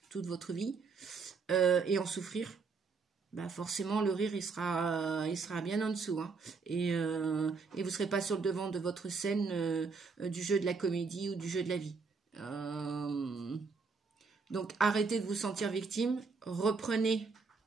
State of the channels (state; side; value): quieter; left; 4.7 dB